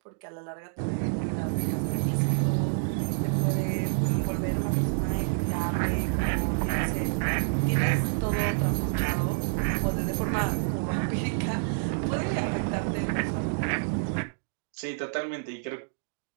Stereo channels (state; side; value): silent; left; 59 dB below the other